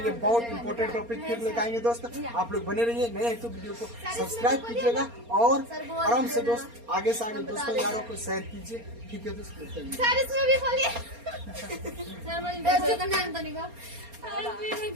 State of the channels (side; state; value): left; late; 4.3 ms